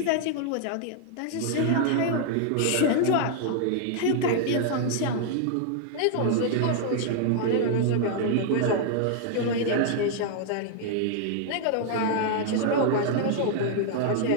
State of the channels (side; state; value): both; different; correlation 0.00